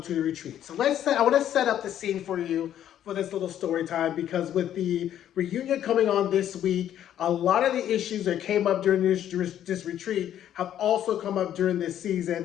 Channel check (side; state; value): right; quieter; 10.9 dB